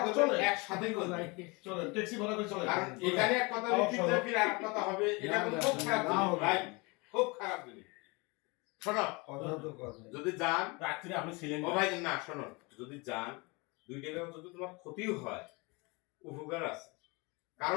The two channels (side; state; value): right; quieter; 27.3 dB